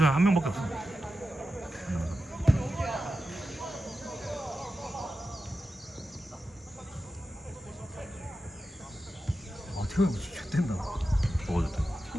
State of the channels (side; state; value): both; normal; correlation 0.91